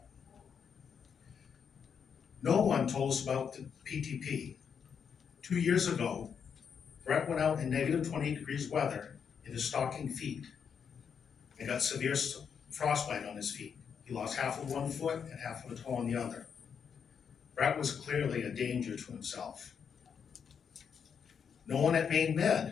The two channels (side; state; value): right; quieter; 7.0 dB